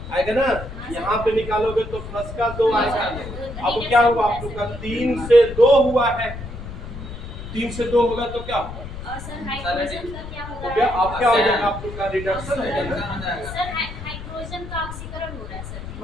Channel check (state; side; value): noise; left; rumble, 10 dB below the sound